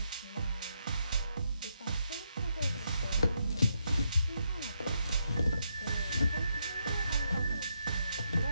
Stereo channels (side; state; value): both; inverted; correlation -0.79